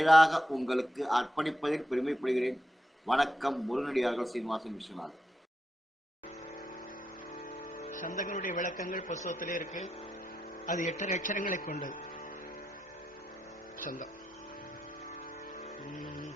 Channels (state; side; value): normal; both; correlation 0.85